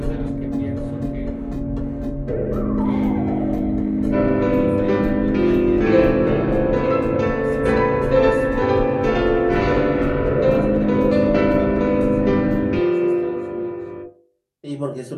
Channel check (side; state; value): both; identical; correlation 1.00